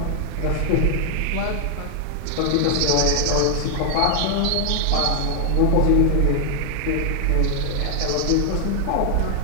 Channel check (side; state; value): both; different; correlation 0.00